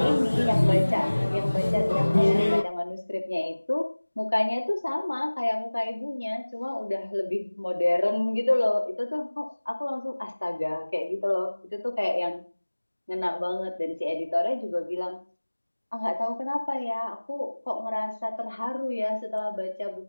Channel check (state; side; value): inverted; both; correlation -1.00